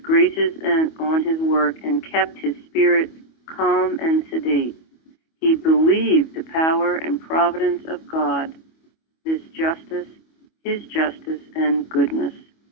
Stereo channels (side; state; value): right; late; 25 ms